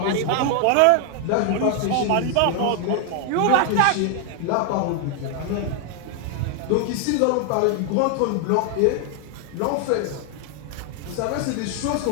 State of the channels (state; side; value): different; both; correlation 0.00